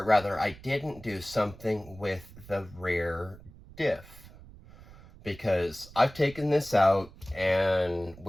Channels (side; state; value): right; noise; rumble, 20 dB below the sound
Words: rather, I didn't do something with the rear diff. Because I've taken this out, and